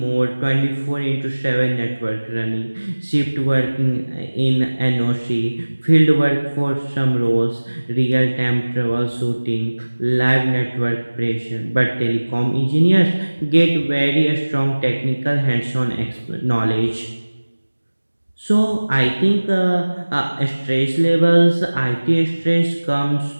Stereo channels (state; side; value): inverted; both; correlation -1.00